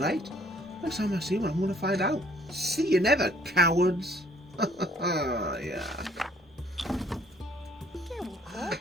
Next time I see one, I'm going to find out. See you never, cowards. Yeah.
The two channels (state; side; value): normal; both; correlation 0.61